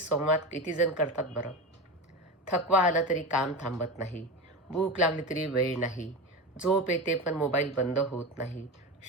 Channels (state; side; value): normal; both; correlation 0.23